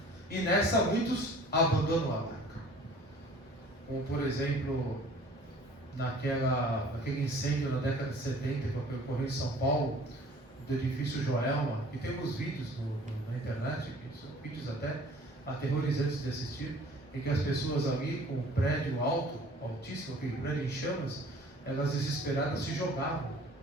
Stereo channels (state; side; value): normal; both; correlation 0.50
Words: E nessa muitos abandonam a barca, como por exemplo naquele incêndio na década de 70 que ocorreu em São Paulo, do edifício Joelma, e temos vídeos na internet, que são vídeos até aterrorizantes de assistir, em que as pessoas ali com o prédio alto, altíssimo, aquele prédio em chamas, elas desesperadas se jogavam,